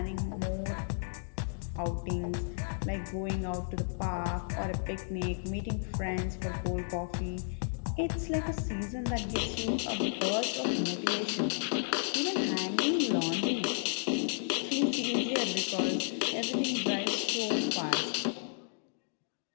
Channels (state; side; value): silent; right; digital silence